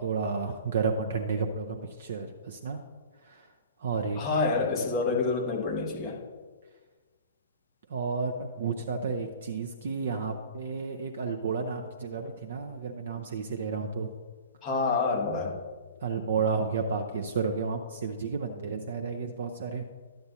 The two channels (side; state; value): both; inverted; correlation -0.41